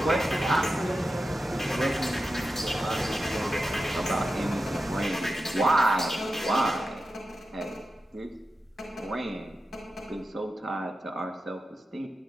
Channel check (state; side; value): normal; both; correlation 0.91